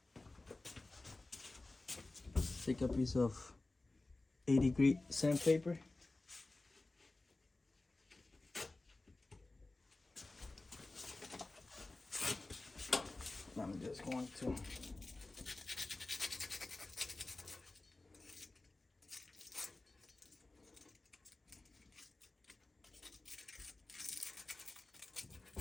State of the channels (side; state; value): right; quieter; 3.1 dB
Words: take a piece of 80-grit sandpaper. I'm just going to